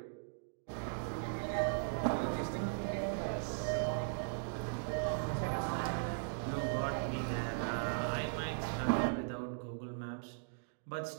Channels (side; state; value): left; silent; digital silence